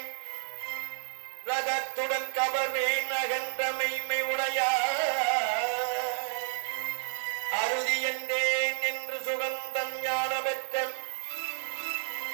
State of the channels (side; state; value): left; silent; digital silence